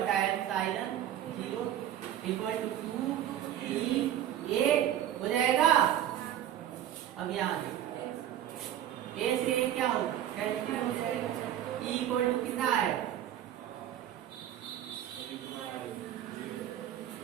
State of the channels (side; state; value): left; quieter; 11.2 dB